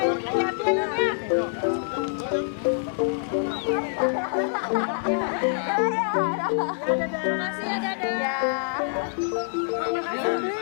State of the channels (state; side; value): silent; right; digital silence